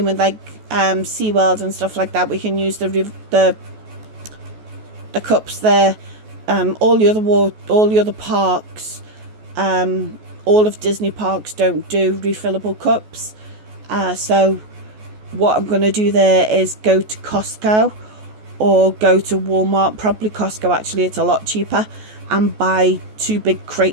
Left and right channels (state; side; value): late; left; 14 ms